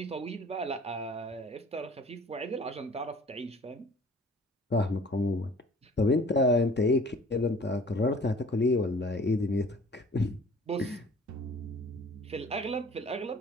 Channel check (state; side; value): normal; both; correlation 0.49